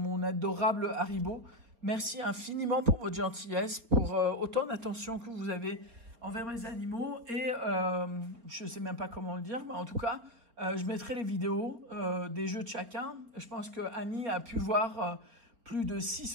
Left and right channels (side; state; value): left; late; 4.3 ms